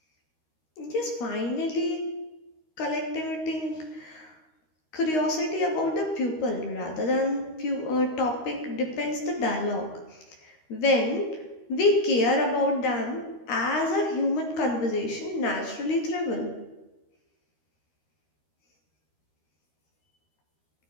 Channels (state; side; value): late; right; 13 ms